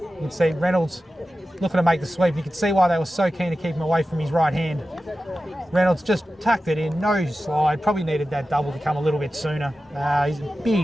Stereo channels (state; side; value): normal; both; correlation 0.94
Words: You can see Reynolds looking to make the sweep. You can see why they were so keen to keep him away from his right hand. Reynolds just tucked it in, no slide. Probably needed that double to come a little bit sooner. He's a